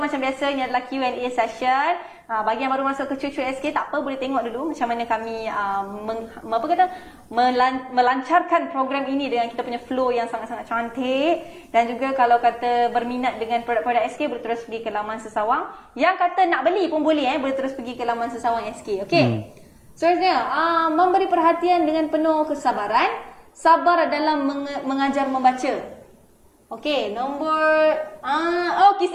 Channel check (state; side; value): identical; both; correlation 1.00